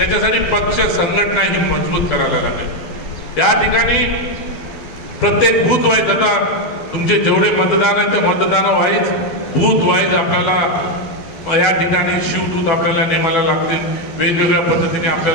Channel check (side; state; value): right; late; 12 ms